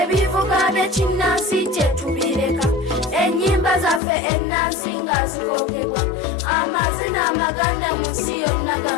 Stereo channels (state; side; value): drops out; right; at 4.0 s